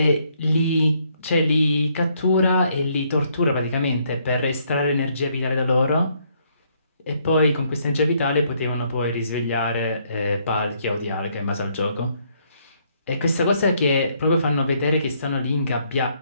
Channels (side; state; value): both; inverted; correlation -0.70